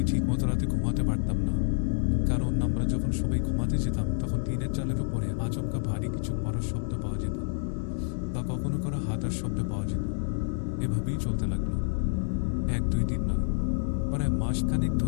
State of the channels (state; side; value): silent; right; digital silence